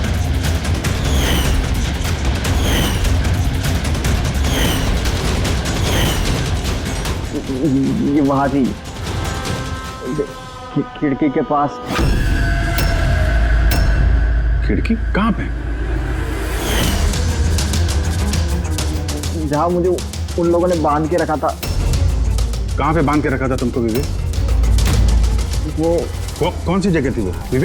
वहां थी, खिड़की के पास। खिड़की कहाँ पे? जहाँ मुझे उन लोगों ने बांध के रखा था। कहाँ पे बांध के रखा था तुमको विवेक? वो कौन सी जगह थी वो?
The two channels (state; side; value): identical; both; correlation 1.00